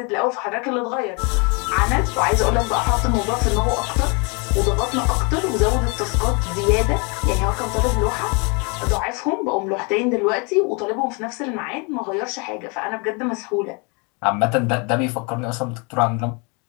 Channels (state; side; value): quieter; right; 32.3 dB